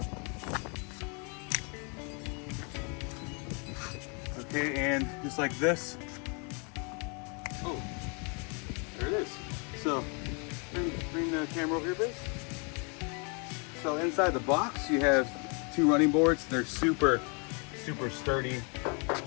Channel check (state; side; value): quieter; right; 35.1 dB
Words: Okay, and just like this. Oh, there it is. So, bring the camera over here, please. So inside the box, you have two running boards. They're super sturdy,